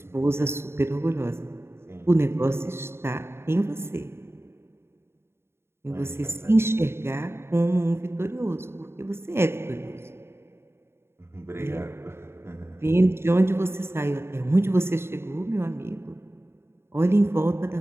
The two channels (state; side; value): late; left; 0.12 ms